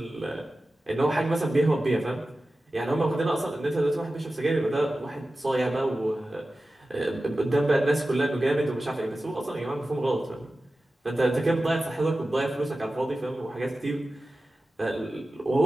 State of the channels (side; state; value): both; normal; correlation 0.95